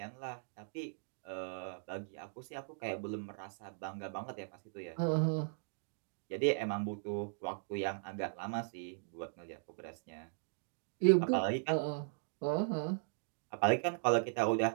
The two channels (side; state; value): left; silent; digital silence